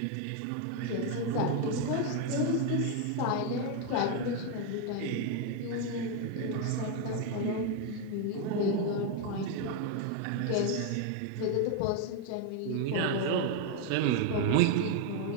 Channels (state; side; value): different; both; correlation 0.01